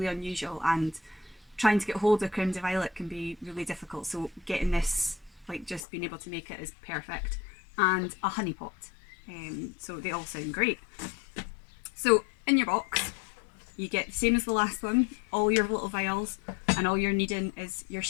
unusual, and trying to get hold of creme de violet can be really difficult, so getting this, like just being able to make it, is perfect, and a honey pot. So they all sound great. So in your box you get the same as the last one, all your little vials, and all you're needing is your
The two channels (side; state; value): right; drops out; at 5.8 s